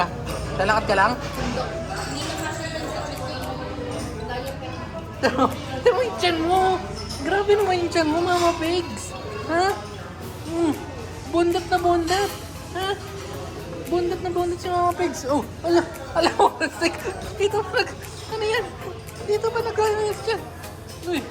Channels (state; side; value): identical; both; correlation 1.00